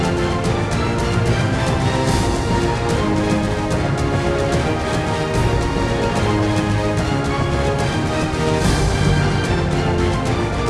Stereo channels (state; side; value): identical; both; correlation 1.00